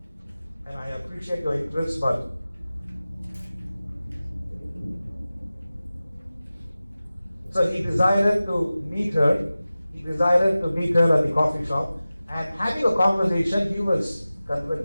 And I appreciate your interest, but so he decided to meet her. He decided to meet her at the coffee shop, and having a conversation, he was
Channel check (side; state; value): both; inverted; correlation -0.96